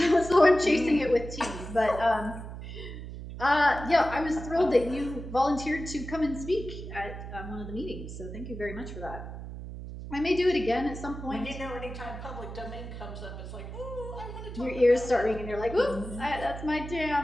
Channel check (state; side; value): noise; right; hum, 10 dB below the sound